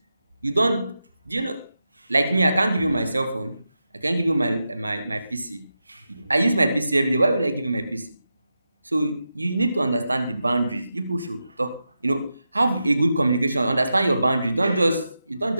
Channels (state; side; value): inverted; both; correlation -0.89